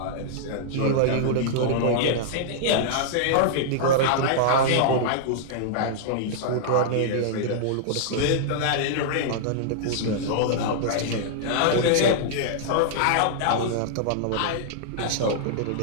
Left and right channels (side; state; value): both; different; correlation -0.02